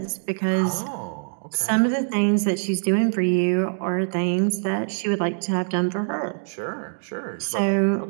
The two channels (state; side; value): silent; left; digital silence